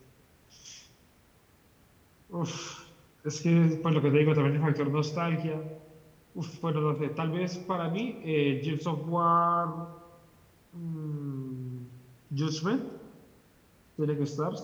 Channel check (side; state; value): both; identical; correlation 1.00